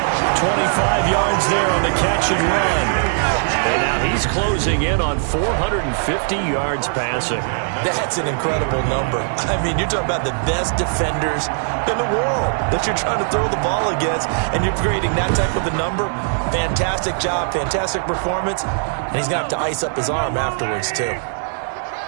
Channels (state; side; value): silent; left; 66 dB below the other